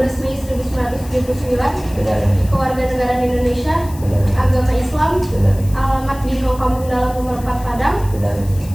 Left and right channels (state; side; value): noise; left; hiss, 19 dB below the sound